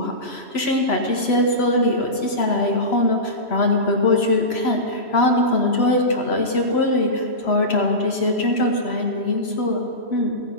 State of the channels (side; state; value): right; late; 3.0 ms